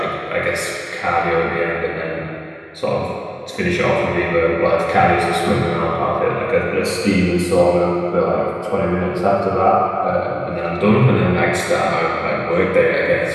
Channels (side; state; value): both; identical; correlation 1.00